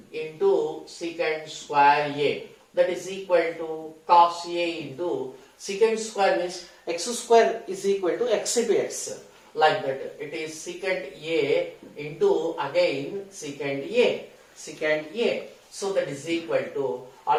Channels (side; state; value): both; identical; correlation 1.00